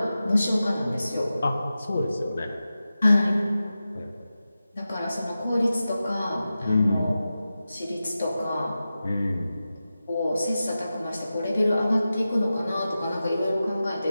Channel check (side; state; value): both; inverted; correlation -0.93